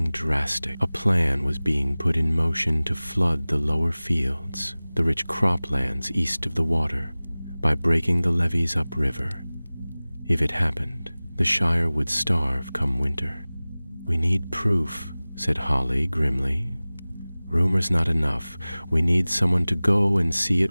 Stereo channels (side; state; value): both; inverted; correlation -0.99